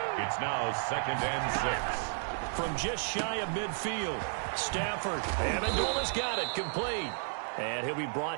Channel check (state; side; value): silent; left; digital silence